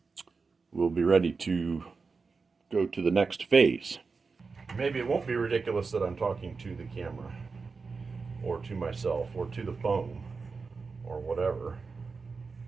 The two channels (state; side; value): quieter; left; 4.6 dB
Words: we'll be ready to go to the next phase. Maybe it won't be ridiculous that I'm talking to the camera, or to myself, or to the phone, or whatever.